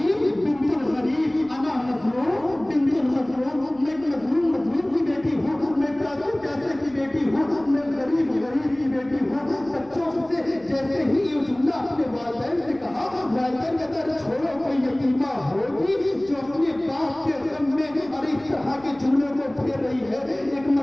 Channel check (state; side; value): noise; left; rumble, 29 dB below the sound